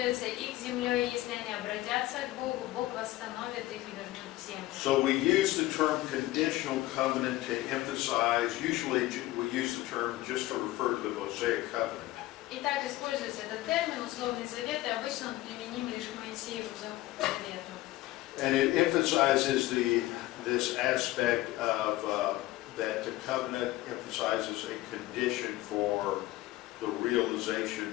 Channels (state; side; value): quieter; right; 17.0 dB